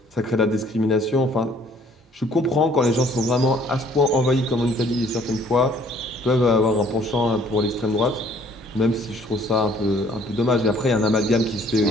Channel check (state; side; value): normal; both; correlation 0.59